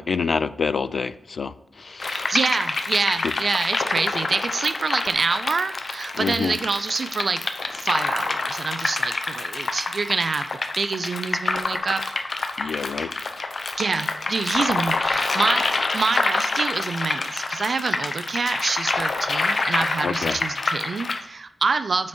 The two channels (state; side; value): normal; both; correlation 0.88